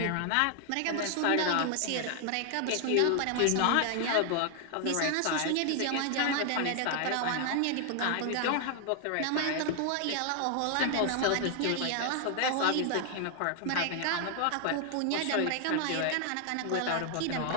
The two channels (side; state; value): both; different; correlation 0.00